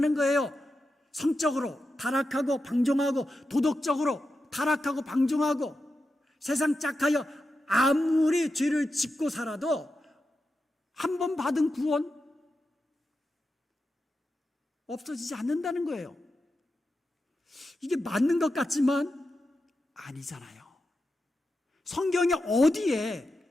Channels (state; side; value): normal; both; correlation 0.89